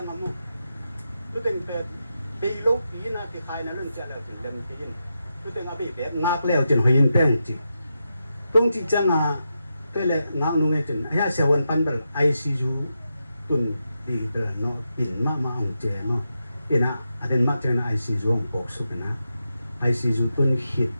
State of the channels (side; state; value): both; inverted; correlation -0.87